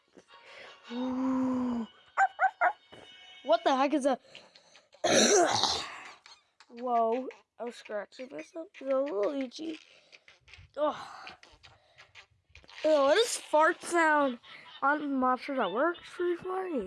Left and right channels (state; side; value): identical; both; correlation 1.00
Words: Ooh. What the heck is that? Whoa. I was scratching myself. It's a little itchy. Oh. Ew, what is fart sound on monsters at work? It's pretty